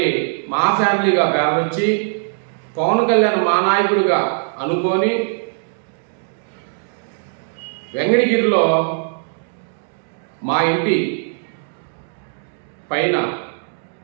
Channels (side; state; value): left; silent; digital silence